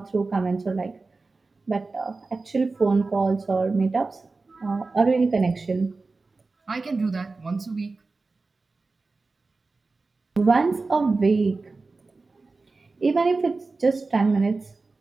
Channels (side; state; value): left; quieter; 3.8 dB